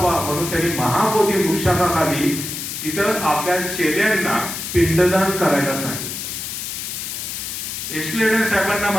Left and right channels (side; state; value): left; noise; hiss, 6 dB below the sound